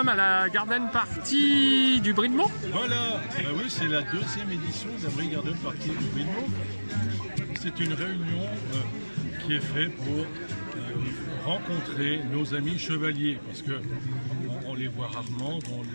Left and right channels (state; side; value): inverted; both; correlation -1.00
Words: à la Garden Party du Brie de Meaux. Voilà, oui, c'est la deuxième édition de la Brie Garden Party du Brie de Meaux. C'est une réunion qui est faite pour rencontrer nos amis chevaliers, parce que on les voit rarement. Donc